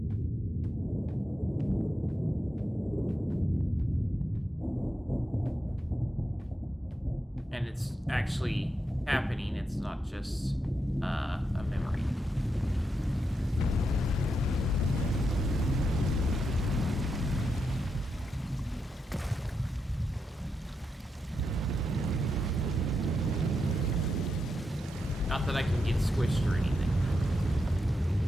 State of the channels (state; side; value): normal; both; correlation 0.85